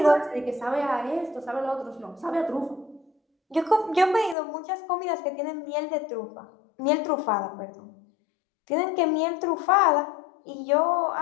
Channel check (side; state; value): right; drops out; at 4.4 s